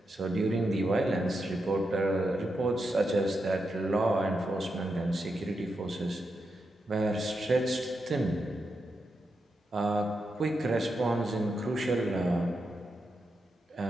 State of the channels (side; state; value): both; normal; correlation 0.86